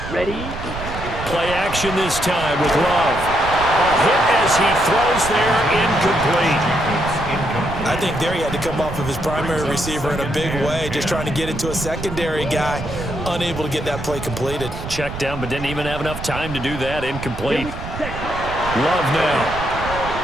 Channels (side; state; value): right; noise; rumble, 9 dB below the sound